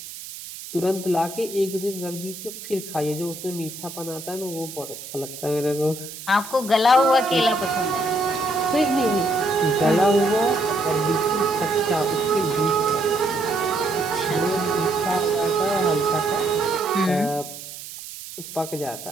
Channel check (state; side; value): noise; right; hiss, 12 dB below the sound